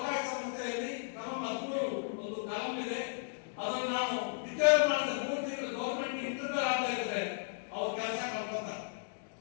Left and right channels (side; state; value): right; silent; digital silence